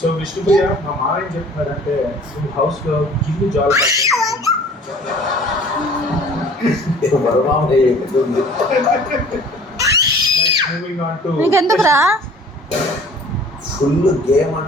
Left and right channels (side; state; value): both; normal; correlation 0.49